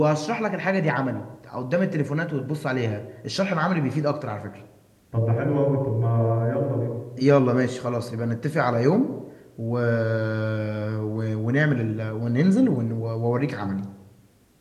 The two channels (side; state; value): both; identical; correlation 1.00